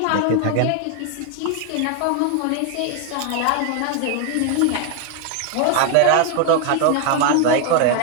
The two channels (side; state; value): both; different; correlation 0.00